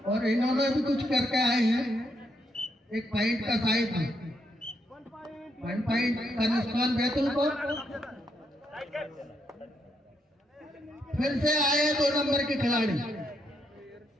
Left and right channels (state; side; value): normal; both; correlation 0.78